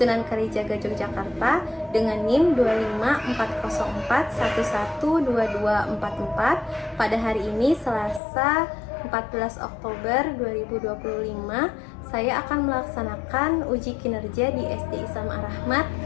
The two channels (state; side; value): drops out; right; at 8.2 s